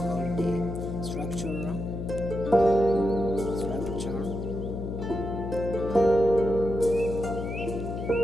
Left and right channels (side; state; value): left; noise; hum, 5 dB below the sound